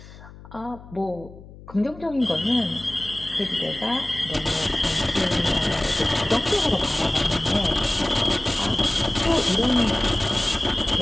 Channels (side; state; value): left; noise; hum, 18 dB below the sound